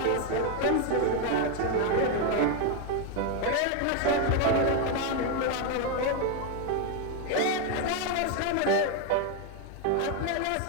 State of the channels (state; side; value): different; both; correlation 0.01